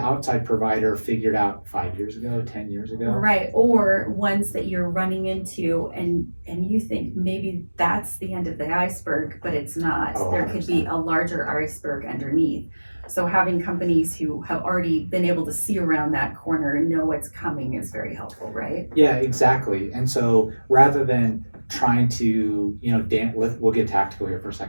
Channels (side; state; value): both; inverted; correlation -1.00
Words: outside provider figured out 5 years ago, 10 years ago. Right, or ones that you're running into and you think maybe that's the end of the iceberg, but it's not. Oh, there could be a larger iceberg underneath. So having companies who have already been able to see around that corner and know what's coming is very helpful, right? Yeah, exactly. And so rather than trying to, we'll get tactical here for a